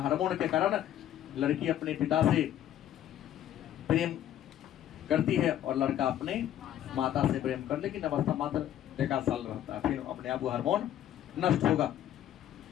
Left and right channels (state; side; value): quieter; right; 11.5 dB